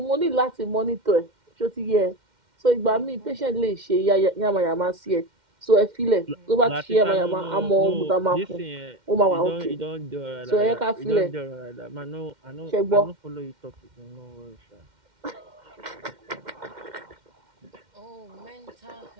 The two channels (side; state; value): left; late; 2.1 ms